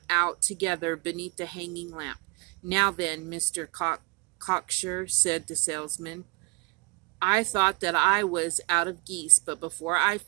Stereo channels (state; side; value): quieter; left; 28.8 dB